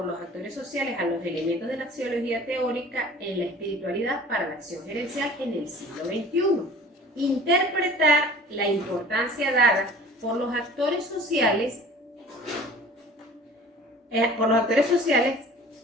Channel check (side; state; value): both; normal; correlation 0.45